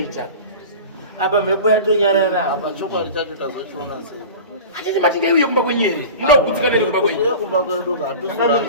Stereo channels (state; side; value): inverted; both; correlation -0.35